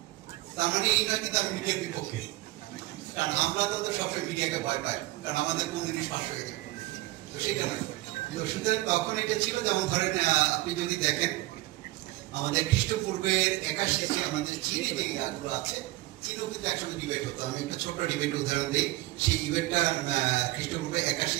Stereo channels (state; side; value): quieter; left; 18.7 dB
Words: তার মানে এই নয় কিন্তু আমি মিডিয়ার বিপক্ষে, কারণ আমরা তো সবসময় মিডিয়াকে ভয় পাই, কারণ আমাদের কোন জিনিস ফাঁস হয়ে যায়, তো সেটা নয়। তো সুতরাং তখন এটা ছিল, যেমন ধরেন আপনি যদি দেখেন আমাদের খ্রিস্টপূর্বের 81 আমাদের চীনে যে ইয়াগুলো আছে, চীনও কিন্তু একসঙ্গে ডিবেট হতো। আমি একটা ছোট্ট ডিবেট উদাহরণ দিই। সেই ডিবেটটা খ্রিস্টপূর্বে